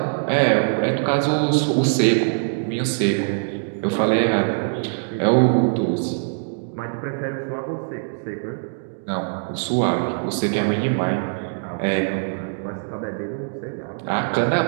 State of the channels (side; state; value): left; silent; digital silence